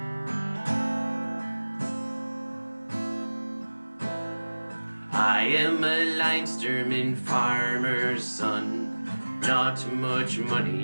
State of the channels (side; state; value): both; inverted; correlation -1.00